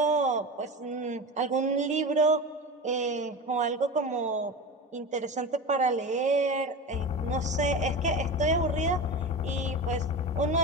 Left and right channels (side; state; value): both; normal; correlation 0.27